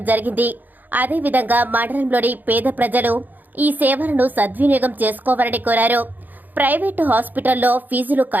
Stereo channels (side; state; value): left; late; 0.085 ms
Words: జరిగింది. అదేవిధంగా మండలంలోని పేద ప్రజలు ఈ సేవలను సద్వినియోగం చేసుకోవాలని కోరారు. ప్రైవేటు హాస్పిటల్లో ఫీజులు